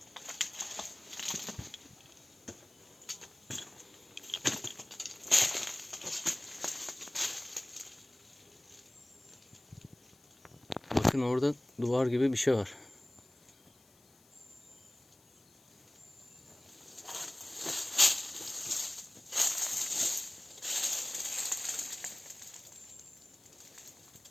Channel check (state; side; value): noise; left; hiss, 29 dB below the sound